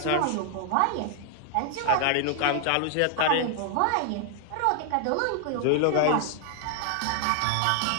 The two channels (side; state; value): both; different; correlation 0.00